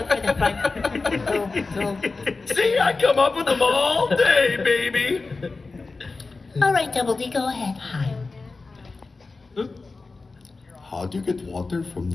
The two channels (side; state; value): right; quieter; 3.9 dB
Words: for the front. See, I come up with them all day, baby. All right, Double D, go ahead. How do you get water from